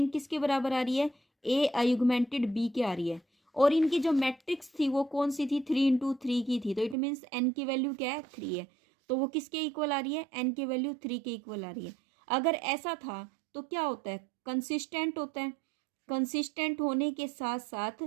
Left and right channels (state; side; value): drops out; left; at 7.0 s